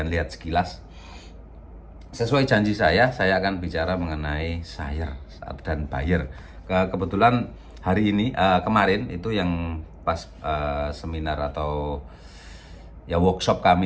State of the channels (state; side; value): identical; both; correlation 1.00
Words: lihat sekilas. Sesuai janji saya akan bicara mengenai seller dan buyer. Kebetulan hari ini, kemarin itu yang pas seminar atau ya workshop